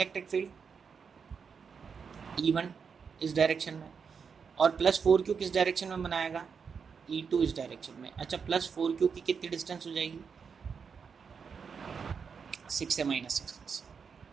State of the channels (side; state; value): left; quieter; 6.1 dB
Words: फील्ड E1 इस डायरेक्शन में, और प्लस 4Q किस डायरेक्शन में बनाएगा, E2 इस डायरेक्शन में। अच्छा, प्लस 4Q की कितनी डिस्टेंस हो जाएगी, 6 से -6।